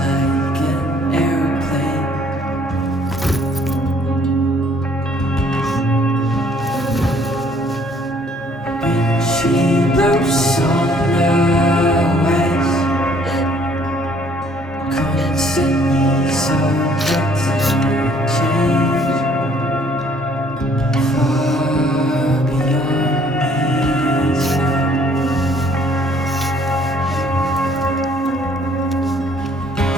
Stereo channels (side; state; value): both; normal; correlation 0.61